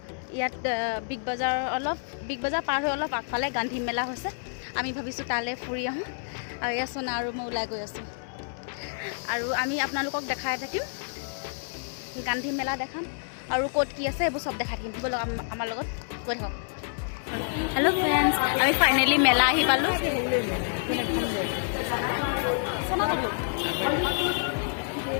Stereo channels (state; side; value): silent; right; 59 dB below the other